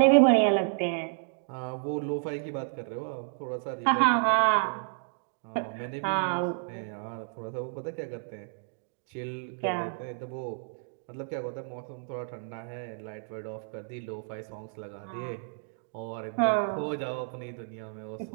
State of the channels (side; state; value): left; silent; digital silence